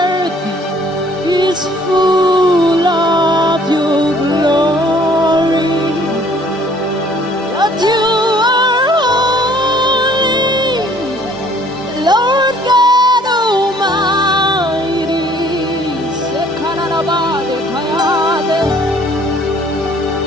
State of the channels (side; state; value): both; normal; correlation 0.58